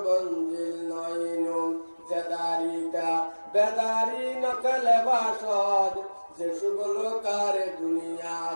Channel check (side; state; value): both; inverted; correlation -1.00